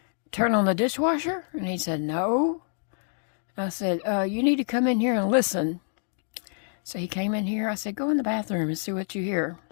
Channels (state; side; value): silent; right; digital silence